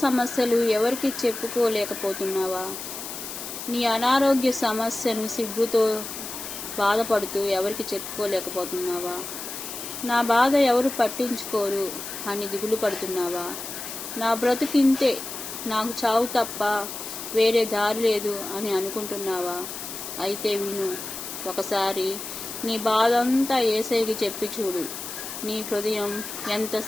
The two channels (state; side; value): noise; left; hiss, 8 dB below the sound